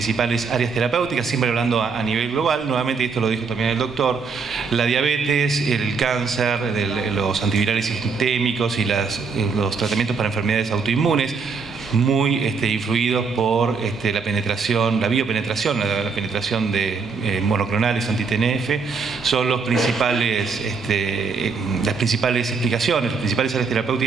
áreas terapéuticas, siempre hablando a nivel global. Nuevamente, y esto lo dijo también el doctor, la diabetes, el cáncer, los antivirales sistémicos y los tratamientos para enfermedades autoinmunes, muy influidos por la penetración, la biopenetración, la penetración de monoclonales anti-TNF, son las principales explicaciones, las principales áreas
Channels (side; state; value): left; quieter; 5.1 dB